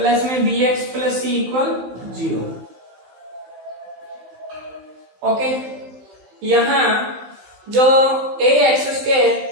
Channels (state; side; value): late; left; 15 ms